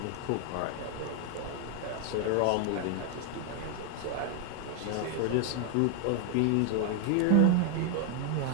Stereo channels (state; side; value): different; both; correlation 0.00